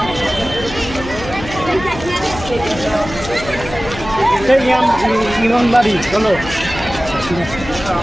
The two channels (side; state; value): left; noise; hum, 12 dB below the sound